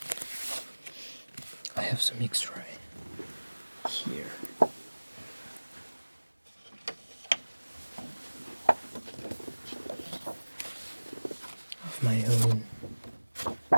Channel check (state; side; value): inverted; both; correlation -1.00